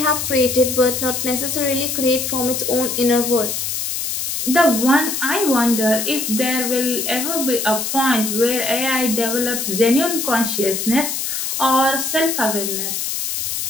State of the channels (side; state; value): left; noise; hiss, 2 dB below the sound